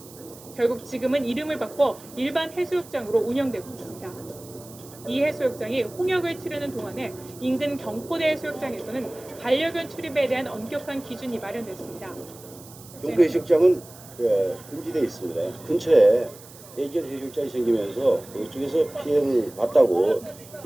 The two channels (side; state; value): right; noise; hiss, 20 dB below the sound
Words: 결국 지금은 이름을 바꿔 일반 해수욕장으로 운영되고 있습니다. 이 해수욕장이 홍역을 치르는 동안에 인근 경포대 해수욕장에서는 반려견 출입에 대한 엄격한 기준이 마련됐습니다. 경포 해수욕장은 금지되어 있습니다. 근처에 애견 해수욕장이 생기면서 이쪽에서 피해를 봤다고